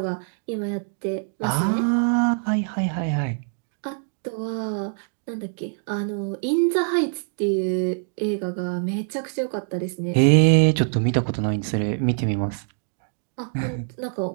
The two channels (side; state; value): left; silent; 62 dB below the other